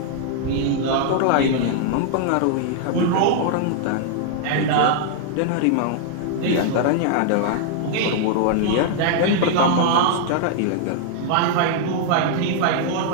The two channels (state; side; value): different; both; correlation -0.01